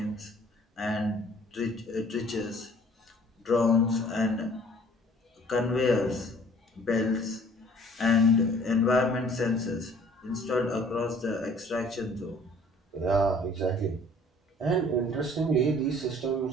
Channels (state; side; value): normal; both; correlation 0.54